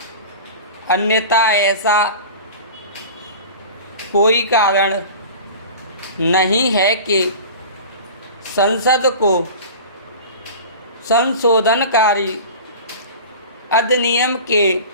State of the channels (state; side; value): inverted; both; correlation -0.37